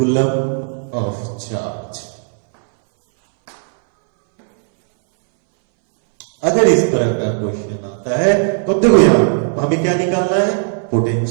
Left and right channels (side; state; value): left; silent; 64 dB below the other